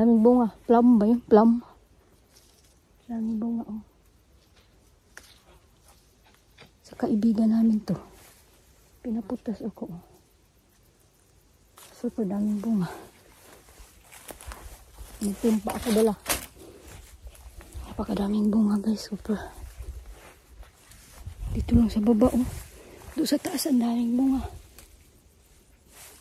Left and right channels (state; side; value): identical; both; correlation 1.00